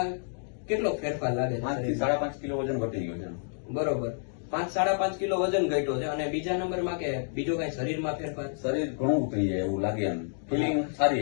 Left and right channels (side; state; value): right; silent; digital silence